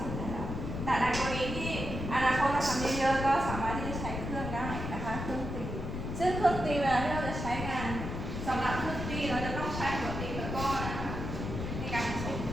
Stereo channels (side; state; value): left; noise; rumble, 5 dB below the sound